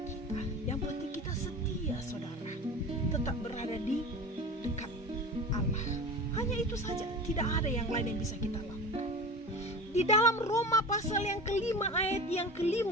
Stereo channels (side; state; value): both; normal; correlation 0.34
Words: kita. Yang penting kita setia, saudara, tetap berada di dekat Allah. Hanya itu saja, tidak ada yang lain yang bisa kita lakukan. Di dalam Roma pasal yang kelima ayat yang